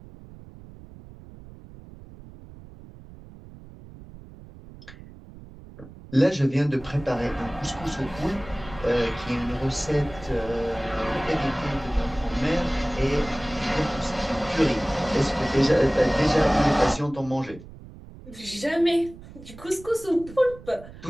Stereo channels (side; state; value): right; noise; rumble, 18 dB below the sound